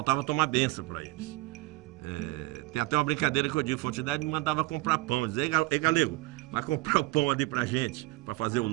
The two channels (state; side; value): quieter; left; 20.1 dB